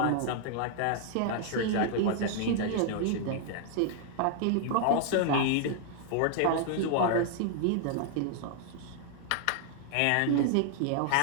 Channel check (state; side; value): different; both; correlation -0.01